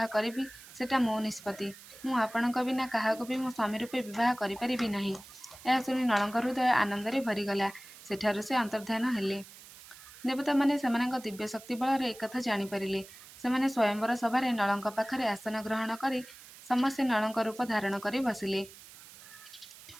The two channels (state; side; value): noise; right; hiss, 18 dB below the sound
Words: କରିବି ସେଟା ମୋ ନିଷ୍ପତ୍ତି। ମୁଁ ଆପଣଙ୍କ ବିନା କାହାକୁ ବି ମୋ ସ୍ୱାମୀ ରୂପେ ବିବାହ କରିପାରିବି ନାହିଁ। ଏହା ଶୁଣି ନଳଙ୍କ ହୃଦୟ ଆନନ୍ଦରେ ଭରିଗଲା। ସେଠାରୁ ସେ ଅନ୍ତର୍ଦ୍ଧାନ ହେଲେ। ଦେବତାମାନେ ସେମାନଙ୍କ ଦିବ୍ୟ ଶକ୍ତି ବଳରେ ଏକଥା ଜାଣିପାରିଲେ। ସେମାନେ ସ୍ୱୟଂବର ସଭାରେ ନଳଙ୍କ ପାଖରେ ଆସନ ଗ୍ରହଣ କରି ସମସ୍ତେ ନଳଙ୍କ ରୂପ ଧାରଣ କରି ବସିଲେ।